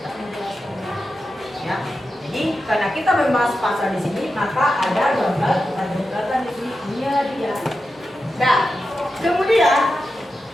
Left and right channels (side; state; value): both; normal; correlation 0.90